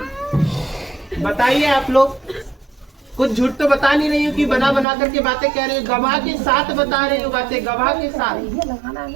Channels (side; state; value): left; drops out; at 4.9 s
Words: बताइए आप लोग। कुछ झूठ तो बता नहीं रही हूँ कि बना बना करके बातें कह रही हूँ, गवाह के साथ बता रही हूँ बातें, गवाह के साथ।